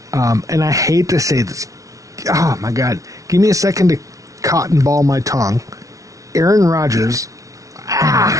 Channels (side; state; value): left; late; 0.16 ms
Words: And I hate to say this. Oh, my God. Give me a second to cotton ball my tongue. Aaron Rodgers.